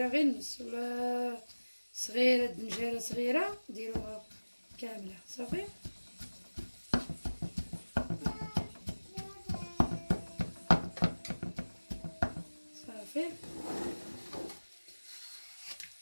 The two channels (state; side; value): inverted; both; correlation -1.00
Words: نص، ولا صغيره دنجاله صغيره ديروها كامله صافي. صافي